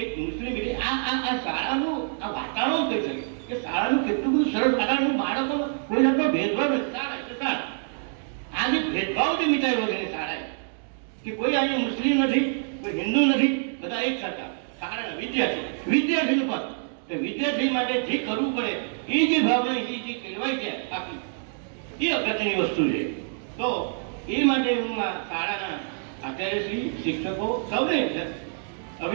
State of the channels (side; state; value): left; silent; digital silence